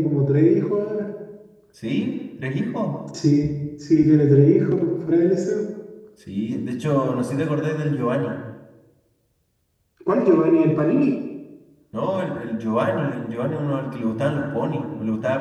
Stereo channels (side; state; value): both; identical; correlation 1.00